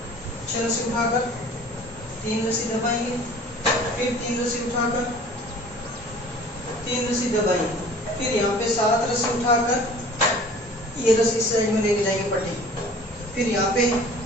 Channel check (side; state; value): both; normal; correlation 0.47